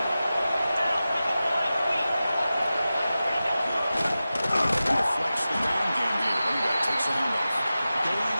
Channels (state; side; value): inverted; both; correlation -0.94